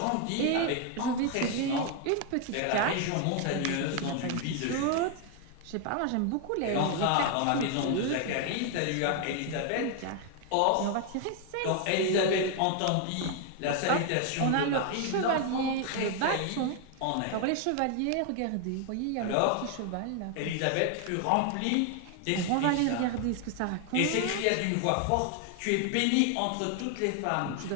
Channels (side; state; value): both; different; correlation 0.01